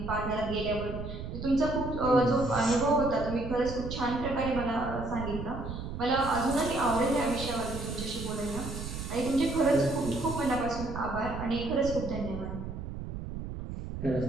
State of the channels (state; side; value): noise; right; rumble, 7 dB below the sound